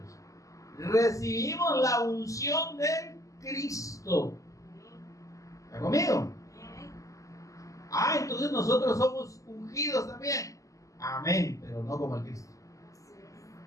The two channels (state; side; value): late; right; 0.16 ms